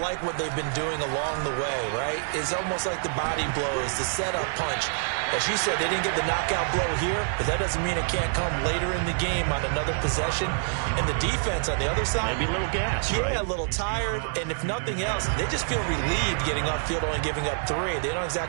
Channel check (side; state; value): left; silent; 57 dB below the other